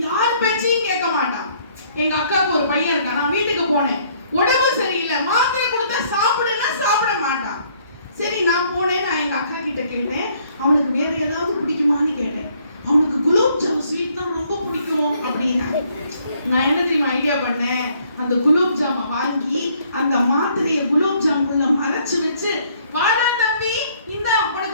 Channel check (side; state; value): both; inverted; correlation -0.64